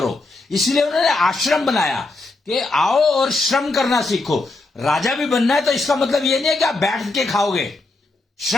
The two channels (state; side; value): quieter; right; 3.2 dB